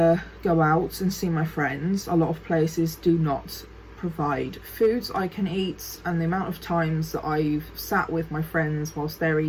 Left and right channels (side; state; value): both; identical; correlation 1.00